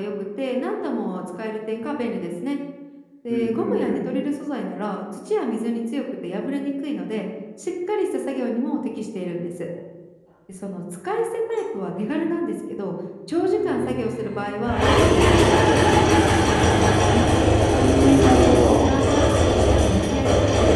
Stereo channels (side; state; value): both; identical; correlation 1.00